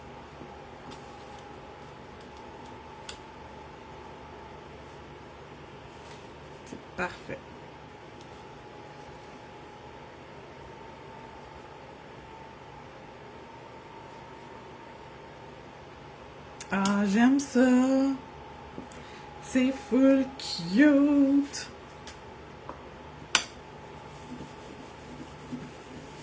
Parfait. Ah, j'aime ça. C'est full cute.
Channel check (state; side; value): identical; both; correlation 1.00